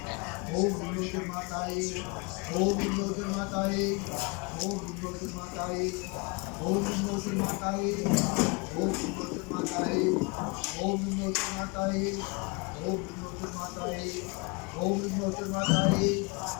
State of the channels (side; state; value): right; quieter; 30.0 dB